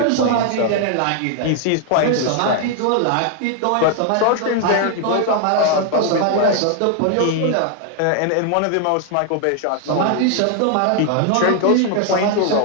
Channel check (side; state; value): both; different; correlation 0.00